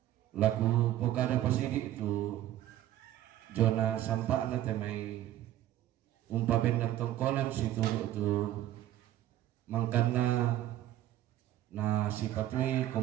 laku pokada pasidi itu jona sampak na te mai bendan tongkonan si turu tu mangkana na si patui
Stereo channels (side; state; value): left; quieter; 13.2 dB